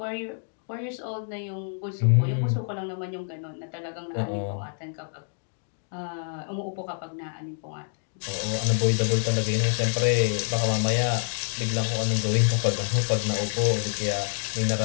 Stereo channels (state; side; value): silent; right; digital silence